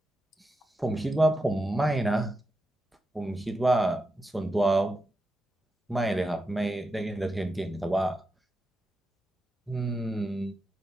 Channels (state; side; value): normal; both; correlation 0.88